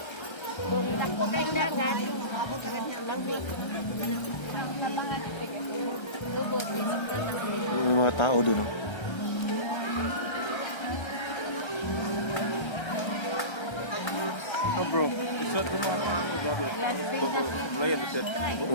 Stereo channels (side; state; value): right; late; 1.3 ms